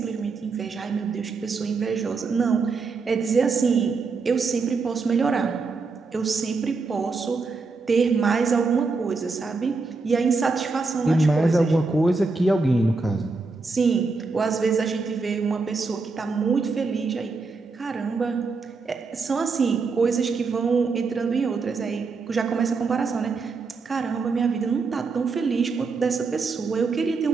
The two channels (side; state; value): left; quieter; 4.3 dB